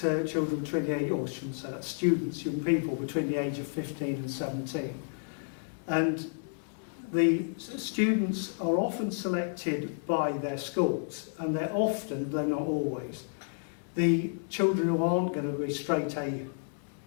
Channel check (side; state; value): right; silent; digital silence